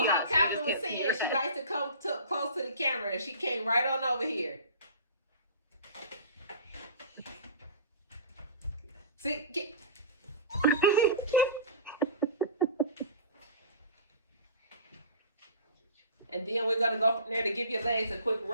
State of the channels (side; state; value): both; inverted; correlation -0.39